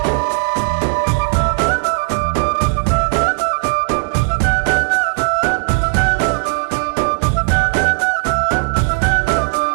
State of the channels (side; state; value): left; silent; 58 dB below the other